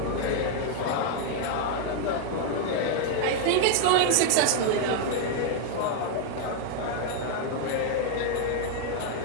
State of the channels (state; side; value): different; both; correlation 0.00